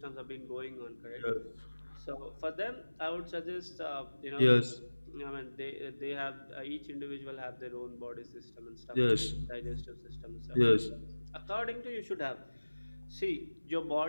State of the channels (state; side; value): inverted; both; correlation -1.00